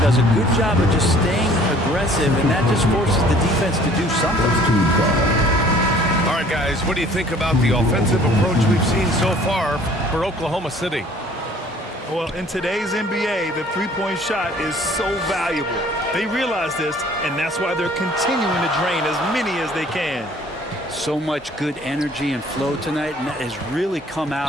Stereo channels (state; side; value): normal; both; correlation 0.54